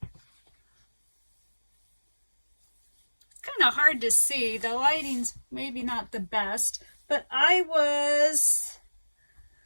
It's kind of hard to see. The lighting's maybe not the best, but I was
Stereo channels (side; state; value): both; inverted; correlation -1.00